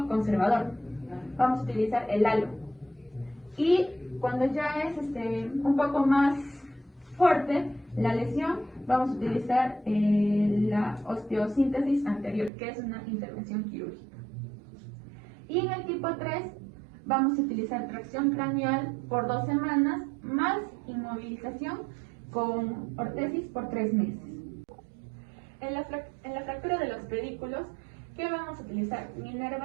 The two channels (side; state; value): left; drops out; at 12.5 s